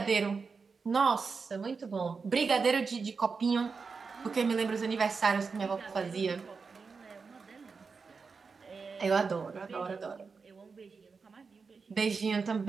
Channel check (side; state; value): left; quieter; 4.9 dB